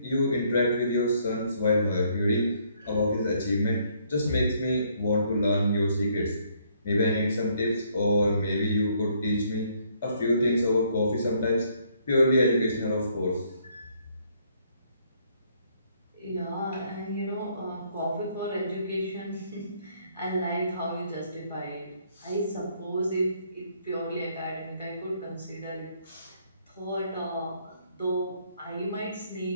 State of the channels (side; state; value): both; inverted; correlation -0.67